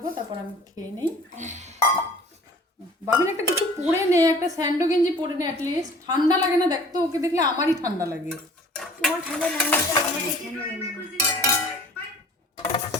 তারপর আমি খেয়ে নেই। বাবিন একটা কিছু পরে নে, একটা স্যান্ডো গেঞ্জি পরে নে, অ্যাটলিস্ট ঠান্ডা লাগে না? দেখতো ওকে দেখলে আমারই ঠান্ডা লাগে। তোমার ঠান্ডা না হলে আমাকে ঠান্ডা লাগবে।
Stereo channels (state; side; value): normal; both; correlation 0.48